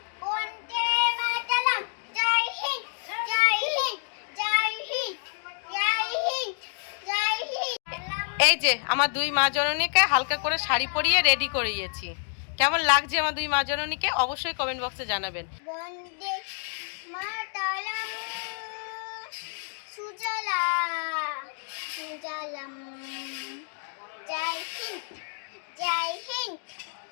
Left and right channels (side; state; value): right; silent; 59 dB below the other